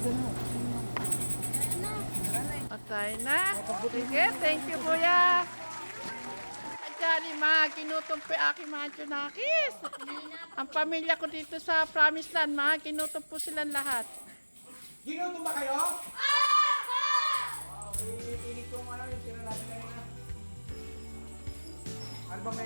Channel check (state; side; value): inverted; both; correlation -1.00